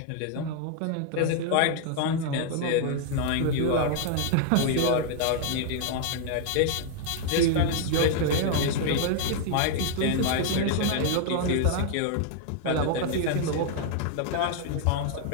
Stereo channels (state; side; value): different; both; correlation 0.00